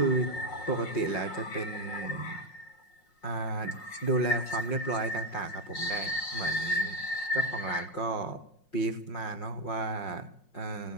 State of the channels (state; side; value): late; right; 5.5 ms